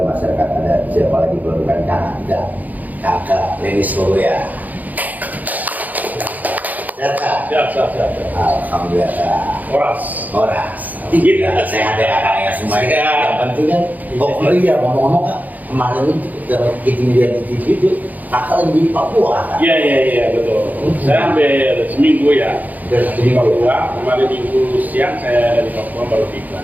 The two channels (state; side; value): late; left; 0.080 ms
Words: Masyarakat Adat, siapa lagi kalau bukan Kakak Leni Surya. Sehat. Alhamdulillah. Horas. Tidak sehat ya kakaknya semuanya. Yang penting kan, iya ngomong-ngomong Kak, kemarin kita lihat di TV itu kakak lagi di Papua kan? Iya betul. Saya hampir seminggu ya. Di Papua, kemarin minggu siang saya dari Papua baru tiba.